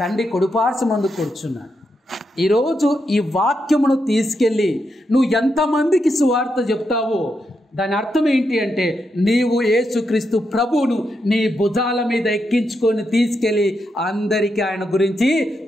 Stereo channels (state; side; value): normal; both; correlation 0.83